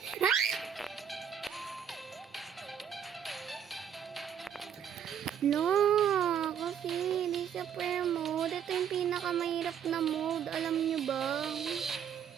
Ha? No, kasi hindi siya prayer mode. Ito yung pinakamahirap na mode. Alam niyo ba?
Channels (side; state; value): left; quieter; 8.5 dB